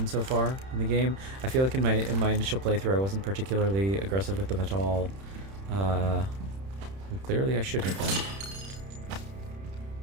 so far in the game. I feel like in my initial playthrough I wasn't particularly aggressive with them at all. And clearly I should have been.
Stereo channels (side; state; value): left; late; 31 ms